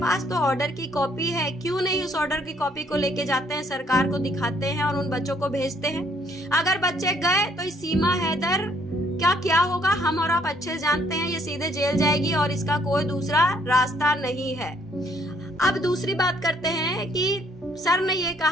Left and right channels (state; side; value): normal; both; correlation 0.66